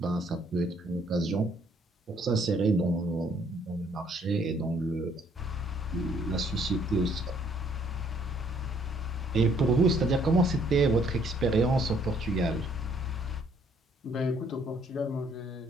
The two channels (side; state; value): both; normal; correlation 0.64